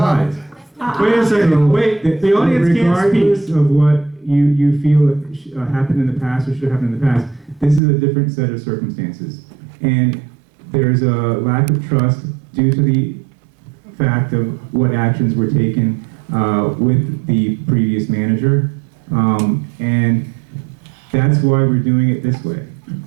Wait a second, So, wait, the audience can't regardless speak. of what you feel happened in the past or should have happened in the past, this is a different set of circumstances. And there's a lack of trust due to the fact of what actions were taken with the previous manager. And that's why we're doing it this way.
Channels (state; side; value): drops out; left; at 7.8 s